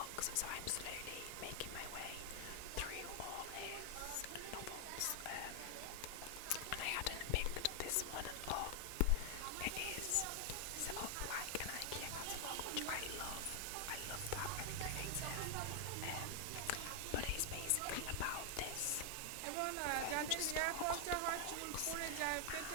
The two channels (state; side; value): different; both; correlation 0.00